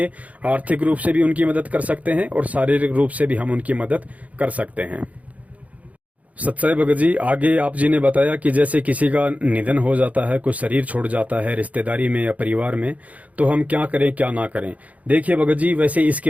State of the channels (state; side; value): late; left; 0.070 ms